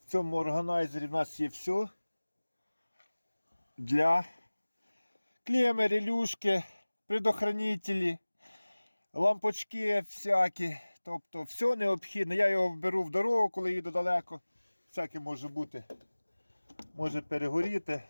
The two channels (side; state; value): both; inverted; correlation -1.00